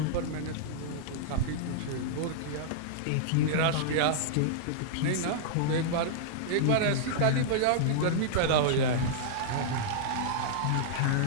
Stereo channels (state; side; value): different; both; correlation -0.02